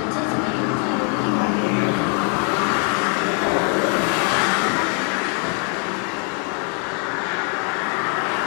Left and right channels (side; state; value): right; quieter; 39.4 dB